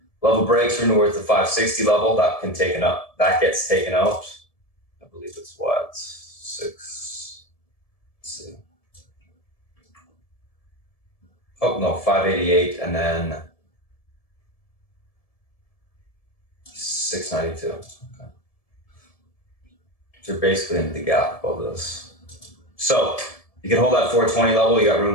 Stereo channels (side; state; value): right; late; 1.7 ms